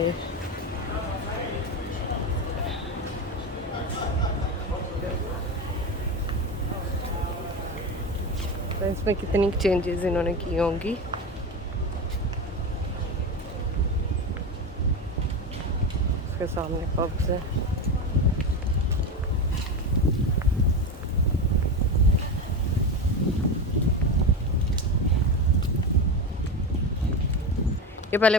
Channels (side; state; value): both; normal; correlation 0.19